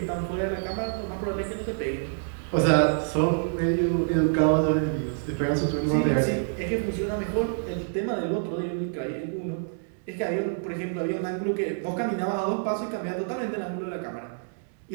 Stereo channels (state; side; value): silent; left; digital silence